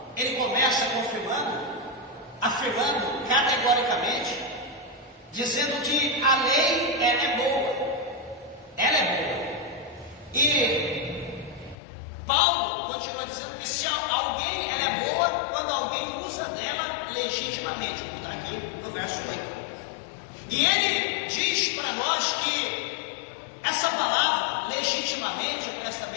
ele começa afirmando categoricamente, dizendo que a lei ela é boa. Ela é boa. E Paulo continua dizendo que se alguém ela é boa quando alguém usa dela legitimamente. Está aqui no verso 8. E ele diz para nós que essa palavra, legitimamente, presta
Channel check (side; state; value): right; drops out; at 11.8 s